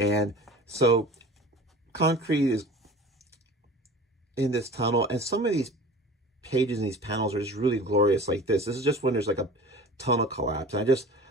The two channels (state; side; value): normal; both; correlation 0.39